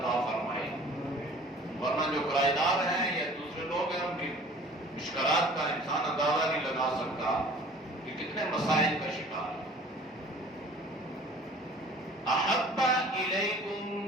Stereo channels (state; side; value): normal; both; correlation 0.48